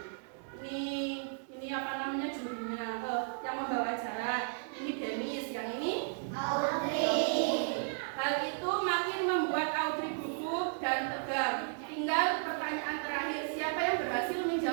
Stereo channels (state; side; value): silent; left; digital silence